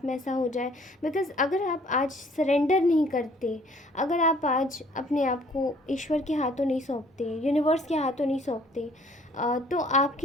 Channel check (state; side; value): normal; both; correlation 0.58